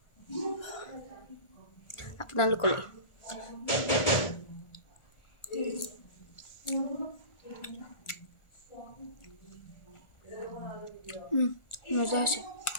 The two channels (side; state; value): right; late; 1.4 ms